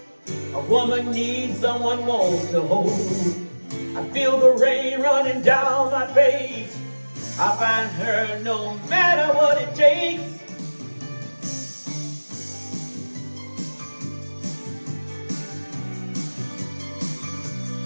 A woman needs someone warm to hold. I feel the rain running down my face. I find her no matter what it takes.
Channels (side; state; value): both; inverted; correlation -1.00